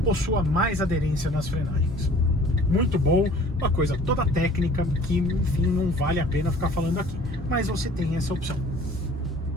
possua mais aderência nas frenagens. Muito bom, uma coisa toda técnica que, enfim, não vale a pena ficar falando aqui, mas você tem essa opção.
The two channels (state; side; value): normal; both; correlation 0.51